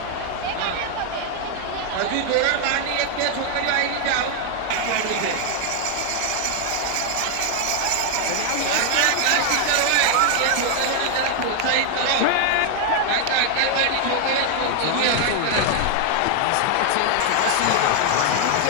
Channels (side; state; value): both; different; correlation 0.00